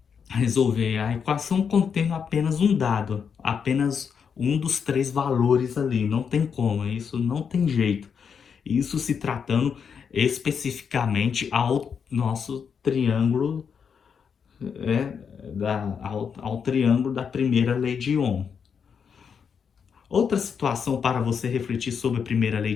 resolver a equação contendo apenas um dado, apenas um dos três valores ali, não tem como, isso não tem jeito. Isso se tratando especificamente ao nosso triângulo, ao triângulo da primeira lei de Ohm. Outra situação para você refletir sobre a primeira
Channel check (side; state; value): right; quieter; 6.7 dB